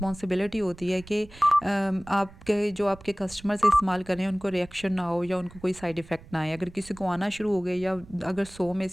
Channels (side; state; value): right; noise; rumble, 20 dB below the sound